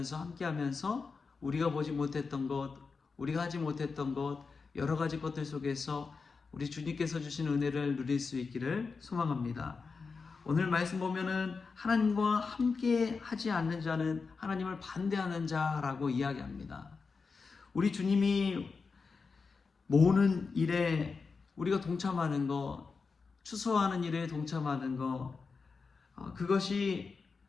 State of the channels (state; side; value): quieter; right; 4.8 dB